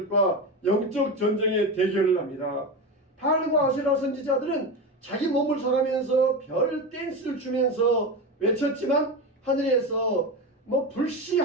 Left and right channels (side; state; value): both; normal; correlation 0.20